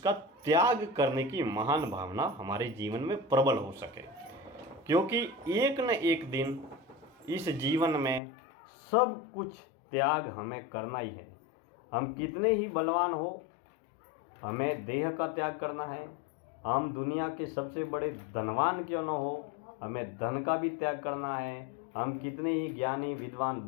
त्याग करने की महान भावना हमारे जीवन में प्रबल हो सके। क्योंकि एक न एक दिन इस जीवन में सब कुछ त्याग हमें करना ही है। हम कितने ही बलवान हो, हमें देह का त्याग करना है। हम दुनिया के सबसे बड़े धनवान क्यों न हो, हमें धन का भी त्याग करना है। हम कितने ही ज्ञानी, विद्वान,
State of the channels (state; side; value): drops out; right; at 8.2 s